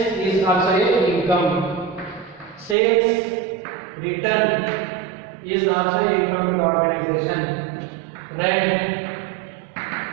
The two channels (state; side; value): drops out; left; at 2.8 s